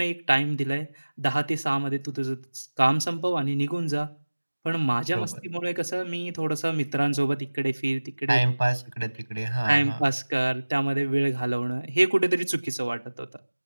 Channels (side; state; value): both; inverted; correlation -1.00